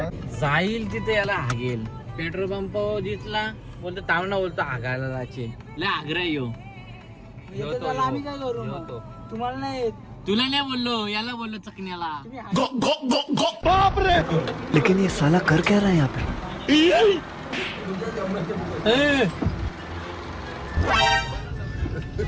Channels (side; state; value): both; identical; correlation 1.00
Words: जाईल तिथे याला हागेल पेट्रोल पंप दिसला बोलतो तावना बोलतो हागायला जायचे लय आग्रा येऊ आम्ही काय करू मग? तुम्हाला नाही येत. तुला नाही बोललो याला बोललो चकण्याला लेकिन ये साला कर क्या रहा है यहाँ पे?